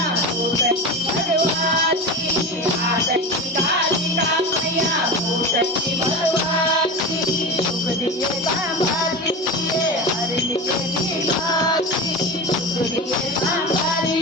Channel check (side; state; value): both; normal; correlation 0.26